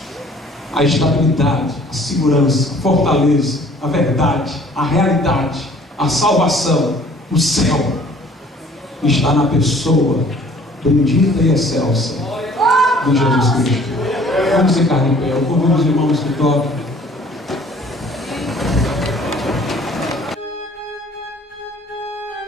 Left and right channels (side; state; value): both; normal; correlation 0.54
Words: A estabilidade, a segurança, a fortaleza, a verdade, a realidade, a salvação, o céu, está na pessoa bendita e excelsa de Jesus Cristo. Vamos ficar de pé. Eu convido os irmãos que tocam.